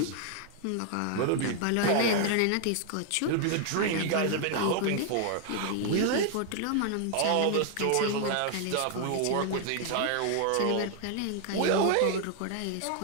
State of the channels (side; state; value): both; different; correlation 0.00